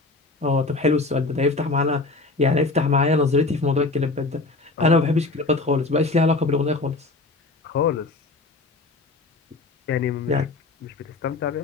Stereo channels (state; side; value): quieter; right; 3.4 dB